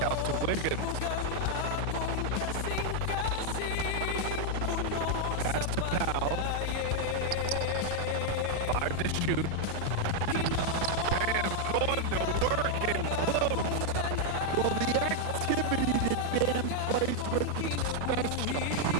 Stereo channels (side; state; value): both; different; correlation 0.00